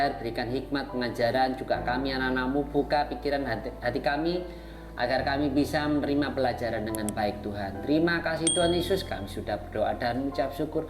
berikan hikmat pengajaran, juga kami anak-anak-Mu, buka pikiran hati kami agar kami bisa menerima pelajaran dengan baik Tuhan. Terima kasih Tuhan Yesus, kami sudah berdoa dan mengucap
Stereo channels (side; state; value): both; identical; correlation 1.00